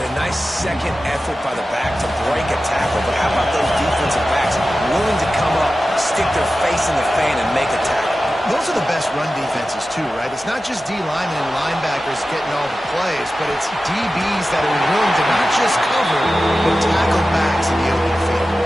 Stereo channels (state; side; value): normal; both; correlation 0.94